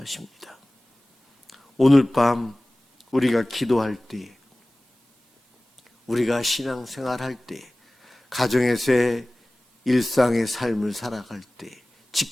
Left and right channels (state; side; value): normal; both; correlation 0.98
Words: 오늘 밤 우리가 기도할 때, 우리가 신앙생활할 때, 가정에서의 일상의 삶을 살아갈 때,